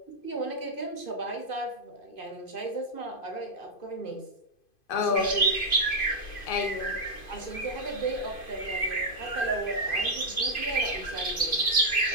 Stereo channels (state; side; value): late; right; 2.5 ms